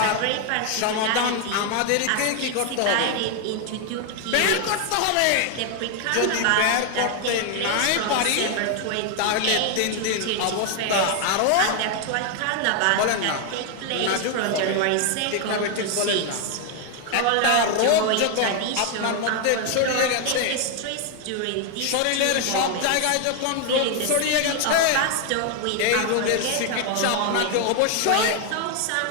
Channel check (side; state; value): both; different; correlation 0.01